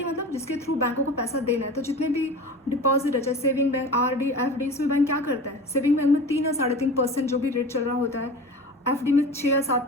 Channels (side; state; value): both; normal; correlation 0.35